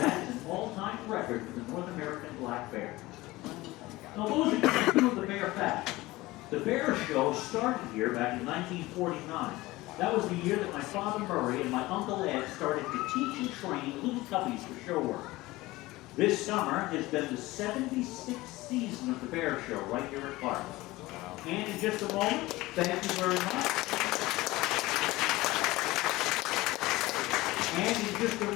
is an all-time record for the North American black bear. Now, those are just a few of the bear facts. The bear show started here back in 1949. That was the year that my father Murray and my uncle Ed started to teach and train little cubbies for show work. This summer has been the 76th season of the bear show right here at Clark. And in just a moment, thank you very much. And in just a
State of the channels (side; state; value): right; quieter; 19.4 dB